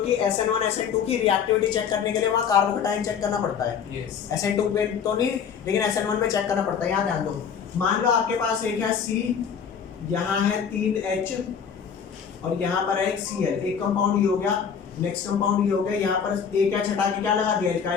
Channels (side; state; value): right; quieter; 7.1 dB